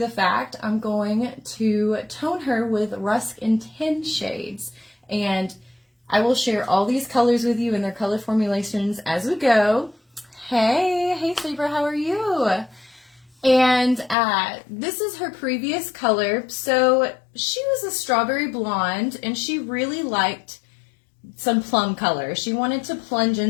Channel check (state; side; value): drops out; right; at 14.2 s